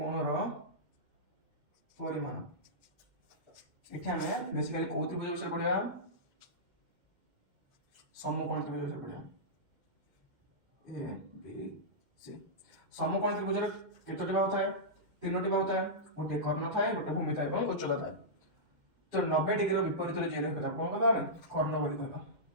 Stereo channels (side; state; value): left; late; 2.1 ms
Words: परिमाण एठी हमें बेसिकली कोन त्रिभुज विषय पढ़िया समकोण त्रिभुज विषय पढ़िया ए बी सी समकोण त्रिभुज केतोटी बाहु थाए तीनोटी बाहु थाए गोटे कर्ण थाए गोटे भूमि थाए और उच्चता थाए तो 90 डिग्री विपरीत जे रेखा कौन कहबा कर्ण बोली कहबा